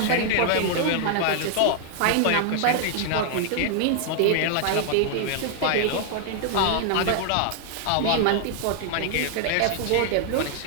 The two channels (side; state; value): both; different; correlation 0.00